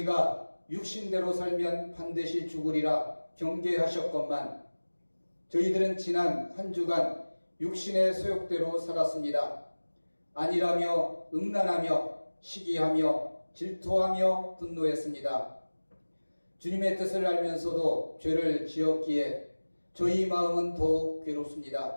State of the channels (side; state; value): both; inverted; correlation -1.00